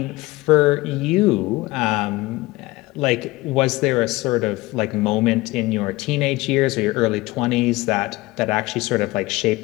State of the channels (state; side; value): quieter; right; 20.6 dB